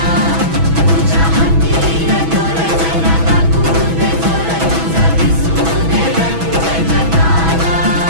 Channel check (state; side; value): late; left; 6.1 ms